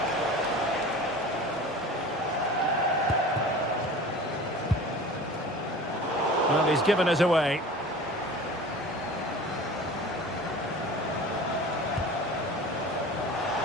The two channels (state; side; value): normal; both; correlation 0.38